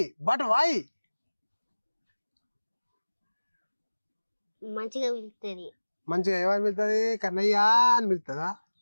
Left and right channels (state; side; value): inverted; both; correlation -1.00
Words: మంచిగా పిలుస్తుంది. మంచిగా ఏమని పిలుతుంది? కన్నయ్య అని పిలుతుందా?